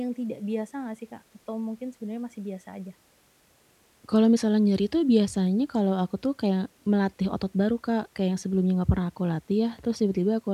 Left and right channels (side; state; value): both; identical; correlation 1.00